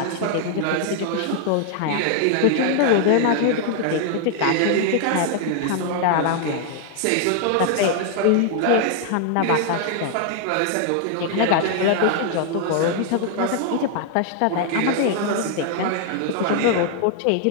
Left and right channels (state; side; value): different; both; correlation 0.00